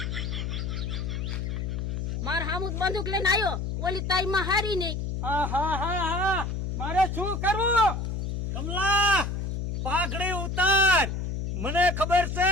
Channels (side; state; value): left; noise; hum, 3 dB below the sound